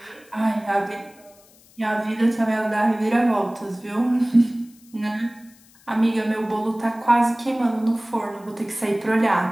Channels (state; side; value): noise; left; hiss, 28 dB below the sound